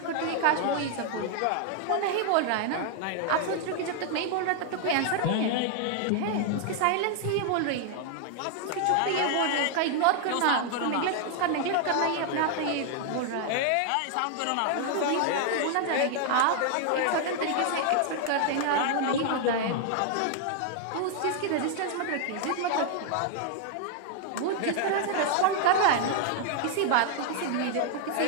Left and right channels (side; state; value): both; different; correlation 0.00